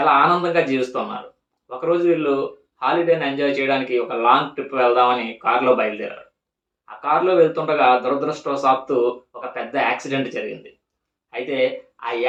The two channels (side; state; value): both; identical; correlation 1.00